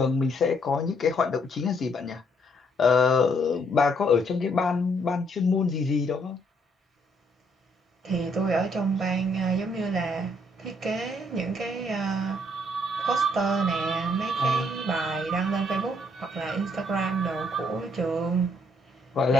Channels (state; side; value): normal; both; correlation 0.70